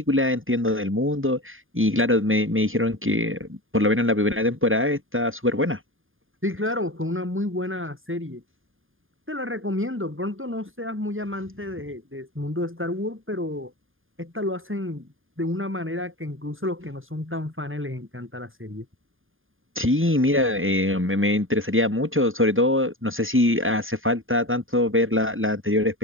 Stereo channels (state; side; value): late; left; 0.59 ms